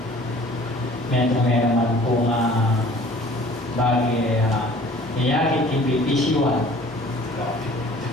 Meron man po nga bagi niyakit yung BPC1.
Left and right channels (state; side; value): normal; both; correlation 0.50